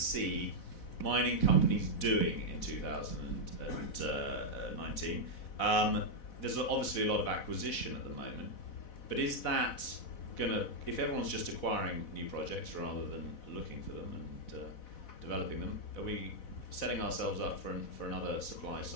mining companies doing in 2019? There's obviously a lot of acquisition at the moment, but is that if everyone's just acquiring new projects rather than looking for them and developing them, are we setting ourselves up for another supply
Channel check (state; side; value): late; right; 4.1 ms